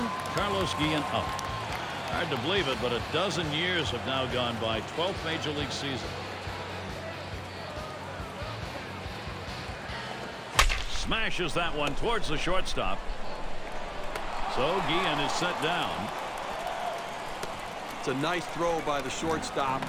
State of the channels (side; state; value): both; identical; correlation 1.00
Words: Carlos Guillen up. Hard to believe it, but a dozen years have now gone by. 12th Major League season. Smashes that one towards the shortstop. So Guillen is set down. It's a nice throw by the shortstop,